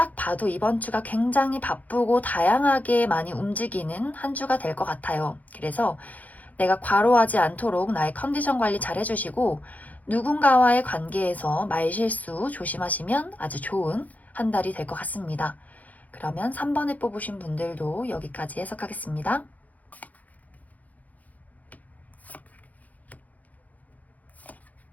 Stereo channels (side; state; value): right; late; 0.077 ms